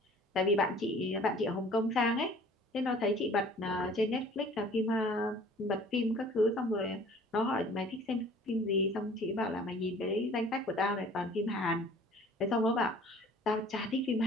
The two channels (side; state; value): both; normal; correlation 0.50